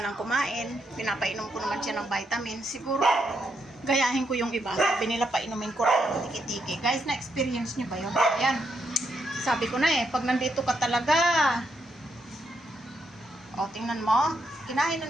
kumain. Pinapainom ko naman siya ng vitamin. Siguro, gayahin ko yung iba. Sabi nila painumin ko rin ng tiki-tiki. Guys, na-experience niyo ba yun? Ayan. Sabi ko na eh, pag nandito ka talaga. O, tingnan mo. Kinain na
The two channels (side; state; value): both; normal; correlation 0.79